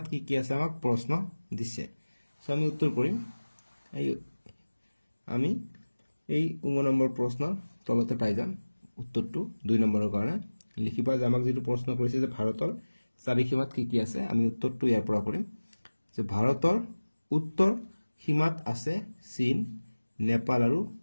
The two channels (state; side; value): inverted; both; correlation -1.00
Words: কি আছে আমাক প্ৰশ্ন দিছে সো আমি উত্তৰ কৰিম আমি এই 9 নম্বৰ প্ৰশ্নৰ তলতে পাই যাম উত্তৰটো 2 নম্বৰৰ কাৰণে লিখিবা যে আমাক যেটো প্ৰশ্ন কৰিছে যে ভাৰতৰ চাৰিসীমাত কি আছে আমি উত্তৰটো ইয়াৰ পৰা কৰিম যে ভাৰতৰ উত্তৰ সীমাত আছে চীন নেপাল আৰু